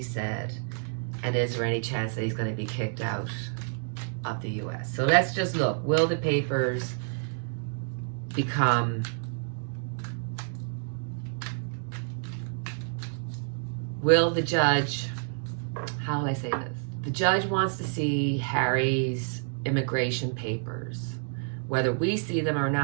said? And is there any chance that he's going to be kicked out of the U.S.? So let's just look. Will the papers become... Will the judge... How will I say this? The judge wants to see Harry's immigration papers. Whether we see them or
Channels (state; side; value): silent; left; digital silence